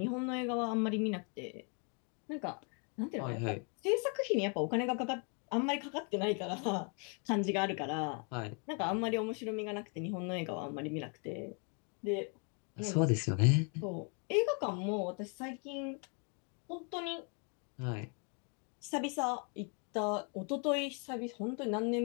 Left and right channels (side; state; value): right; quieter; 37.3 dB